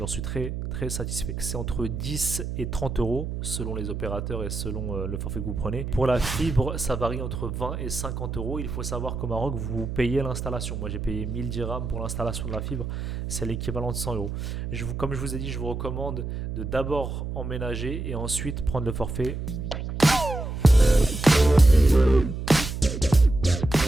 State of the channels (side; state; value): right; noise; hum, 5 dB below the sound